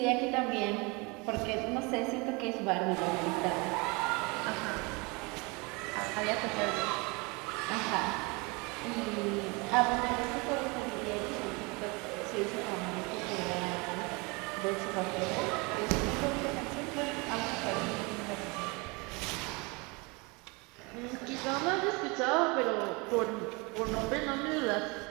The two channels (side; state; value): left; quieter; 27.9 dB